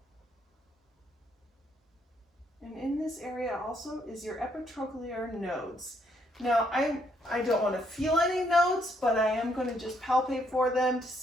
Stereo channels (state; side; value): normal; both; correlation 0.71